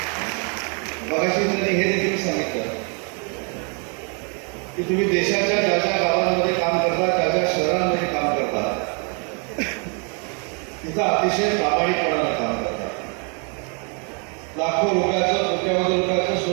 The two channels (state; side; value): quieter; left; 37.2 dB